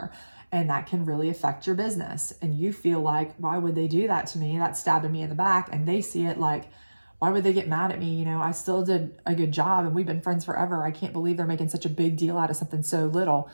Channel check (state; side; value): inverted; both; correlation -1.00